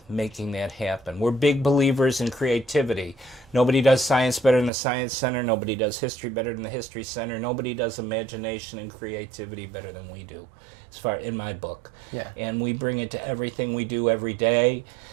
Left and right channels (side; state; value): left; drops out; at 4.7 s